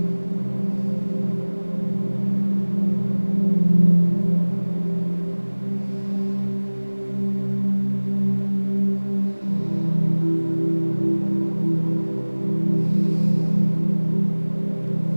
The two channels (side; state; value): both; inverted; correlation -1.00